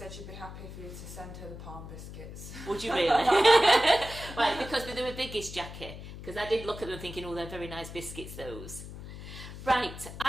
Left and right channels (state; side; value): noise; left; hum, 11 dB below the sound